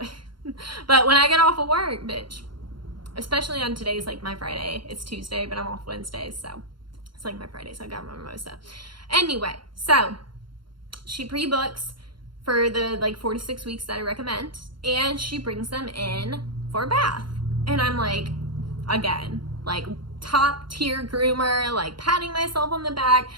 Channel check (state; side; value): late; left; 0.72 ms